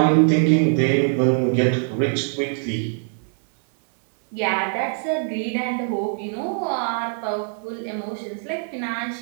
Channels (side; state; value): left; silent; 59 dB below the other